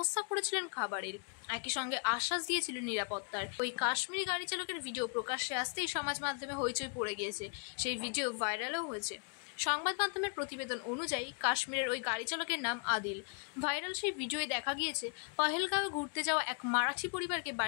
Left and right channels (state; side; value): quieter; right; 39.9 dB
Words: করেছিলেন খাবারের, একই সঙ্গে আশ্বাস দিয়েছিলেন নিরাপত্তার। ওই কাশ্মীরি গাড়ি চালকের ভিডিও প্রকাশ্যে আসতেই সমাজ মাধ্যমে হইচই পড়ে গিয়েছে। সেই ভিডিও ভাইরালও হয়েছে। সংবাদ মাধ্যমের প্রতিবেদন অনুযায়ী কাশ্মীরের ওই গাড়ি চালকের নাম আদিল। ভাইরাল সেই ভিডিওয়ে দেখা গিয়েছে পহেলগাঁওয়ে ঘুরতে যাওয়া এক মারাঠি পরিবারকে